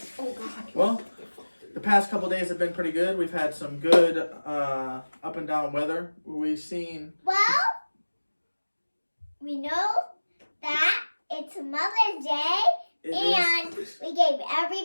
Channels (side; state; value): both; inverted; correlation -1.00